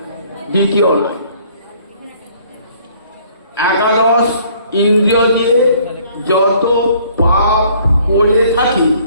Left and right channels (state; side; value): inverted; both; correlation -0.59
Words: দ্বিতীয় না। একাদশ ইন্দ্রিয় দিয়ে যত পাপ করে থাকি,